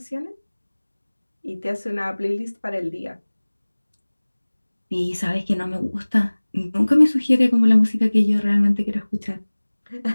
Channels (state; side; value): inverted; both; correlation -1.00